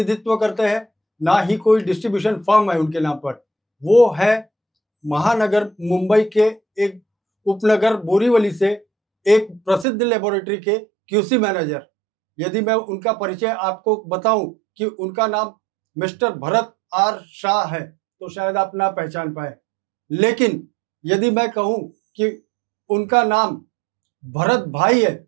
करते हैं, ना ही कोई डिस्ट्रीब्यूशन फर्म है उनके नाम पर। वो है महानगर मुंबई के एक उपनगर बोरीवली से एक प्रसिद्ध लेबोरेटरी के क्यूसी मैनेजर। यदि मैं उनका परिचय आपको बताऊं कि उनका नाम मिस्टर भरत आर शाह है, तो शायद आप ना पहचान पाए। लेकिन यदि मैं कहूं कि उनका नाम भरत भाई है,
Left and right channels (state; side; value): drops out; left; at 9.9 s